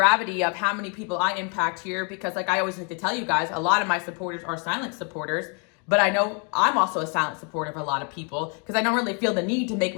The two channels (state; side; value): quieter; right; 37.3 dB